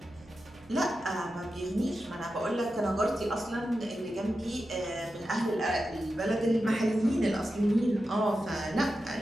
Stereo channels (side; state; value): right; noise; hum, 25 dB below the sound